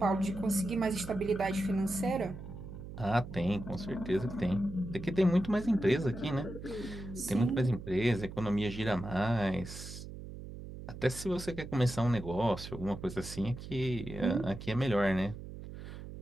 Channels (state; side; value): noise; right; hum, 11 dB below the sound